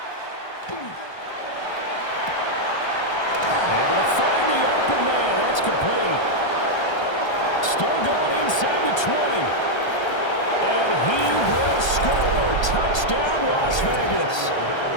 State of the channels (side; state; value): right; late; 1.3 ms